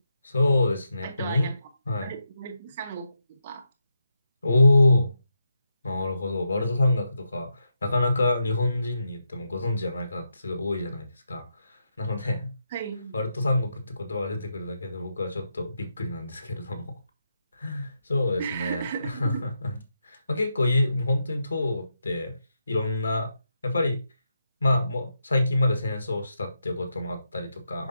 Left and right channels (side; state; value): both; inverted; correlation -0.84